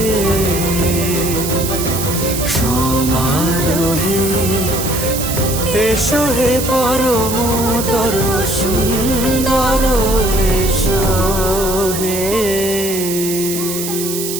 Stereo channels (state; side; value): noise; right; hiss, 5 dB below the sound